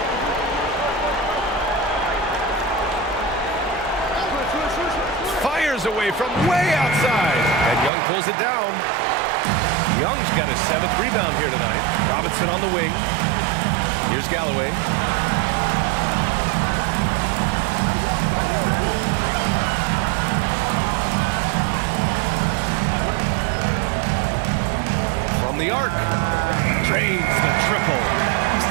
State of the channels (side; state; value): left; drops out; at 7.9 s